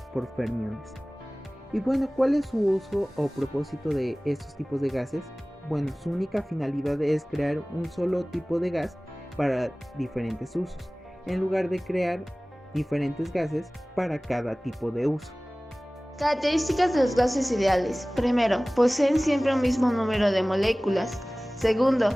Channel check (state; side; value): normal; both; correlation 0.98